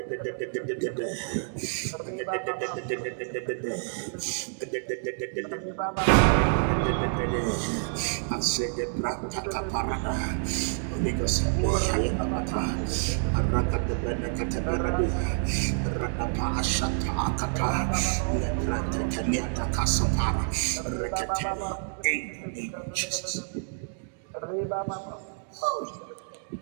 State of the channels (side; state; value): left; silent; digital silence